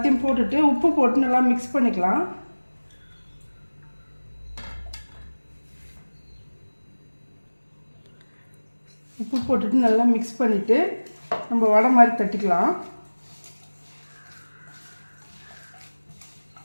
போட்டுட்டு உப்பு போட்டு நல்லா மிக்ஸ் பண்ணிக்கலாம். உப்பு போட்டுட்டு நல்லா மிக்ஸ் பண்ணிவிட்டு நம்ம வடை மாதிரி தட்டிக்கலாம்.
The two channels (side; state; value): both; inverted; correlation -1.00